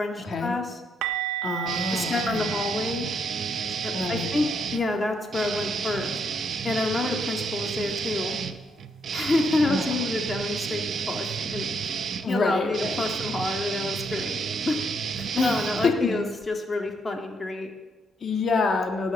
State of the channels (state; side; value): normal; both; correlation 0.75